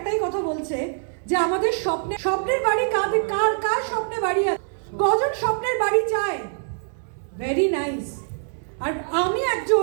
কথা বলছে যে আমাদের স্বপ্নের বাড়ি কার স্বপ্নে বাড়ি আছে, কজন স্বপ্নের বাড়ি চায়। Very nice. আর আমি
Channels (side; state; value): left; silent; 63 dB below the other